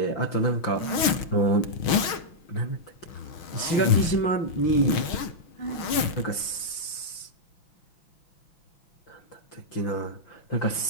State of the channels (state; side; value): late; right; 6.4 ms